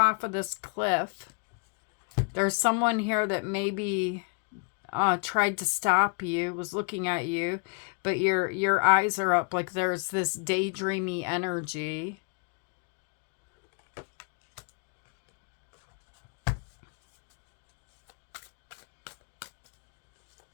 of this cliff. There's someone here that maybe tried to stop you, was looking at you, but your eyes are up, like there's this daydreamy energy.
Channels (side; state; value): right; quieter; 36.8 dB